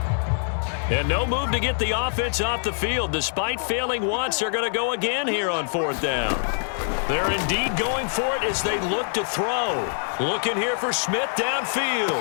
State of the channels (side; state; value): right; silent; digital silence